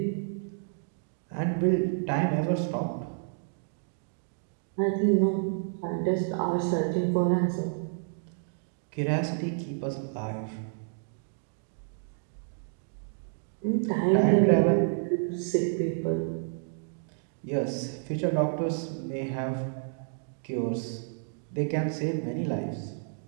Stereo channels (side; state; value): left; silent; digital silence